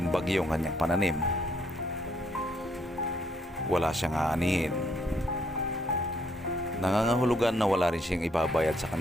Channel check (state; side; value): normal; both; correlation 0.70